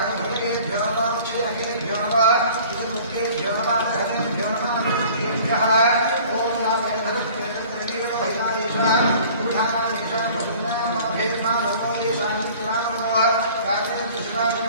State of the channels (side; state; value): both; inverted; correlation -0.48